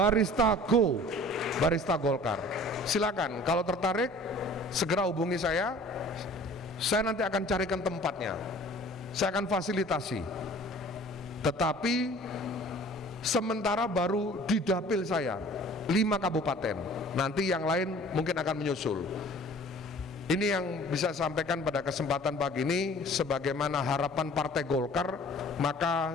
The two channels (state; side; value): normal; both; correlation 0.48